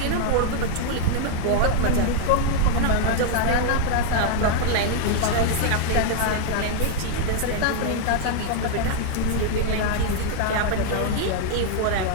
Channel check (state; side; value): different; both; correlation -0.01